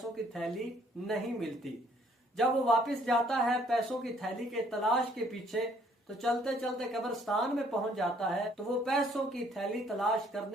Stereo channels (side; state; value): both; normal; correlation 0.63